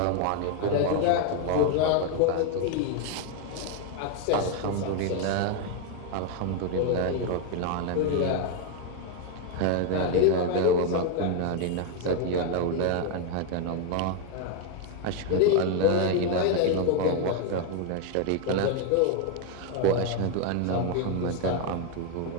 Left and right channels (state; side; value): different; both; correlation 0.01